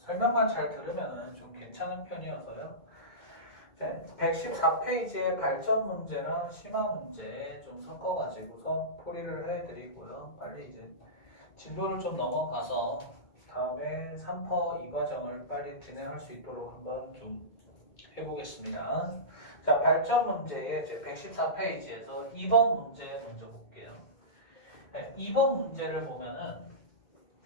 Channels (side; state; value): right; late; 2.1 ms